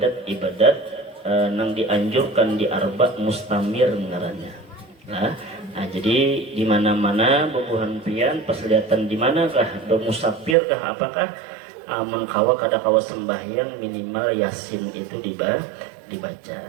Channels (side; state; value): left; drops out; at 10.6 s